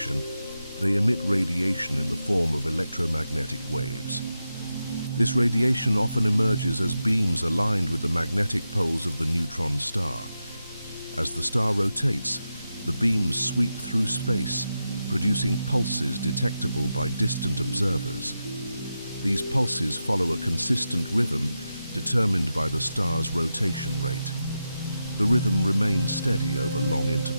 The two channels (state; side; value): inverted; both; correlation -0.89